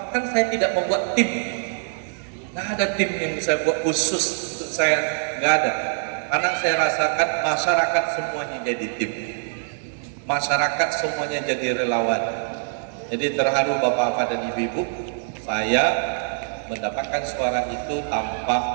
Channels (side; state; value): left; silent; digital silence